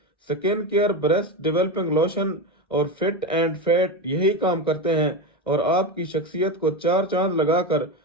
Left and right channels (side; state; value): both; normal; correlation 0.17